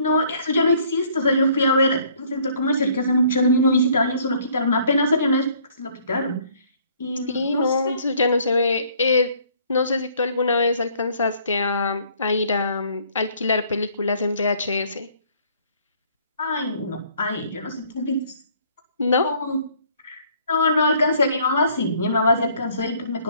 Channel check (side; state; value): both; inverted; correlation -0.61